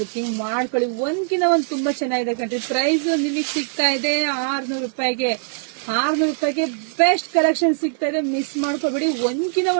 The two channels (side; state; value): left; silent; digital silence